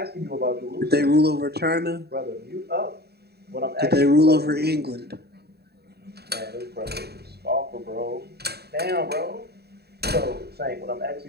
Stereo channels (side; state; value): left; late; 0.47 ms